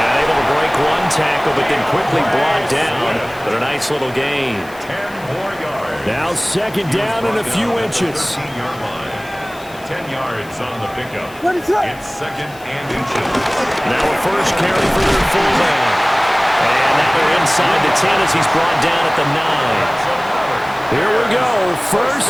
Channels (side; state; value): left; noise; hiss, 23 dB below the sound